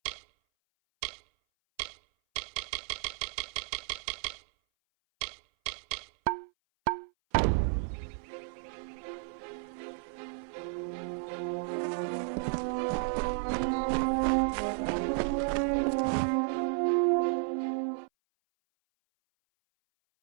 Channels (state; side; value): silent; left; 56 dB below the other